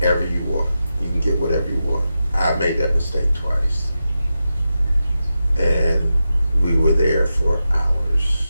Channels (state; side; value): inverted; both; correlation -0.90